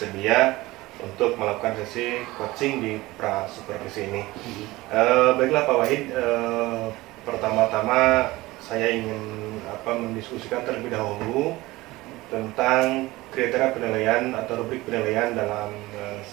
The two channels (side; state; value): left; quieter; 19.6 dB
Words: untuk melakukan sesi coaching di pra supervisi ini. Baiklah Pak Wahid, pertama-tama saya ingin mendiskusikan terlebih dahulu tentang kriteria penilaian atau rubrik penilaian dalam